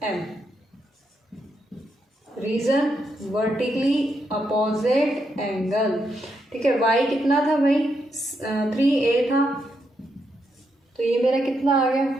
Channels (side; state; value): both; normal; correlation 0.80